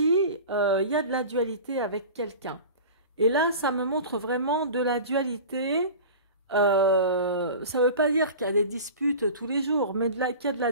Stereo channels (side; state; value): both; inverted; correlation -0.35